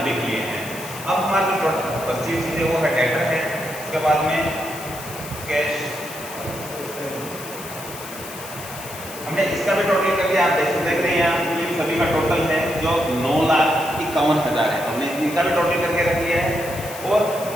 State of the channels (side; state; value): left; noise; hiss, 13 dB below the sound